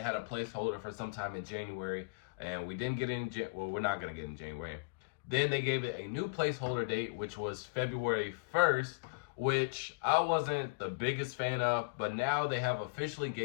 a placeholder for sometime in January. And we didn't get it in, well, we're not going to get it in January. Then they gave it a new placeholder date, which was February 1st, which I wasn't the biggest fan of, but now they have officially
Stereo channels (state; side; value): quieter; right; 30.0 dB